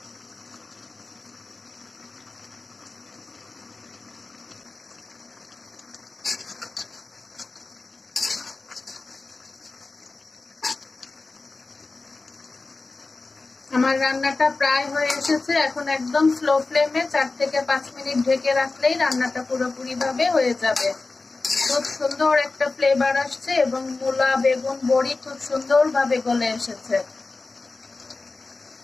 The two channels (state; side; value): quieter; right; 3.6 dB